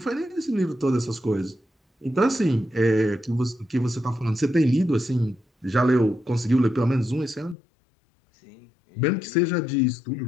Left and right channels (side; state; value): right; drops out; at 7.6 s